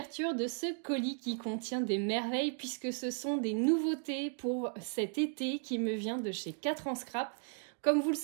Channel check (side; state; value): left; silent; 54 dB below the other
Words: de ce colis qui contient des merveilles puisque ce sont des nouveautés pour cet été qui me vient de chez 4 en scrap. Comme vous le